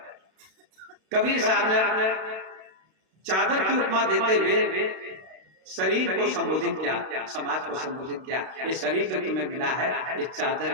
कबीर साहब ने चादर की उपमा देते हुए शरीर को संबोधित किया, समाज को संबोधित किया। ये शरीर जो तुम्हें मिला है ये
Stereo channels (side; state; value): left; late; 32 ms